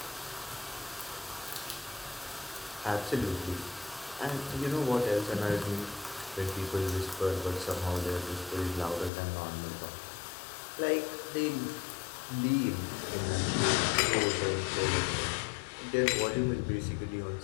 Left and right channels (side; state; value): right; drops out; at 9.1 s